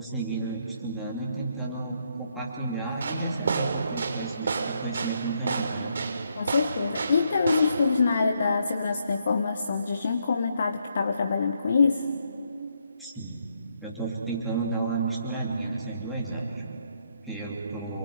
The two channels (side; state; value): both; inverted; correlation -0.75